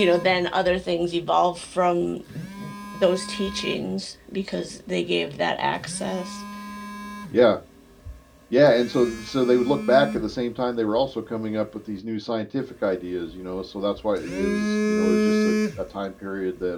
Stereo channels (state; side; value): identical; both; correlation 1.00